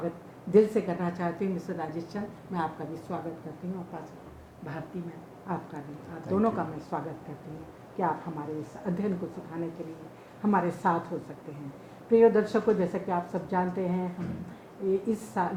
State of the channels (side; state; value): both; identical; correlation 1.00